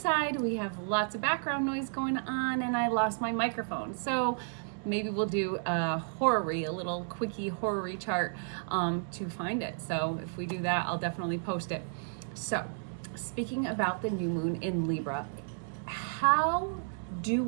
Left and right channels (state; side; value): silent; left; digital silence